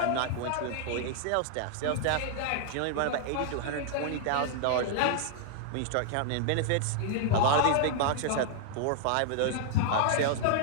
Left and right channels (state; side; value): different; both; correlation -0.01